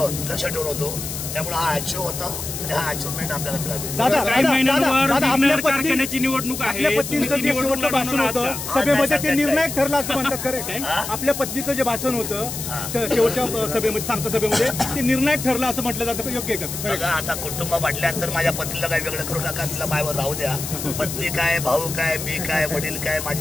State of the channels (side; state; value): left; noise; hiss, 6 dB below the sound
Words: लक्ष ठेवून होतो. त्यामुळे हा अचीव्ह होता आणि हा अचिव्हमेंट आपल्याला मिळाली. काही महिन्यांवर विघ्नहर कारखान्याची निवडणूक आहे. आपल्या पत्नीचं जे शेवटचं भाषण होतं सभेमध्ये ते निर्णायक ठरलं असं म्हणतात खरं. आपल्या पत्नीचं जे भाषण होतं शेवटच्या सभेमध्ये सांगता सभेमध्ये ते निर्णायक ठरलं असं म्हटलं जातं, योग्य आहे का? बघा आता कुटुंब म्हटल्यानंतर माझ्या पत्नीला काही वेगळं करू नका, तिला मायावर राहू द्या. पत्नी काय, भाऊ काय, मी काय, वडील काय,